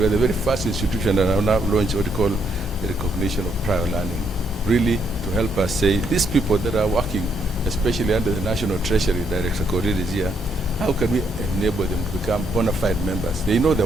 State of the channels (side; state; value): both; normal; correlation 0.74